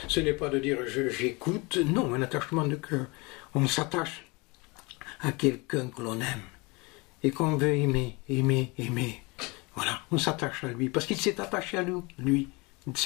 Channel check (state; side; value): quieter; right; 26.7 dB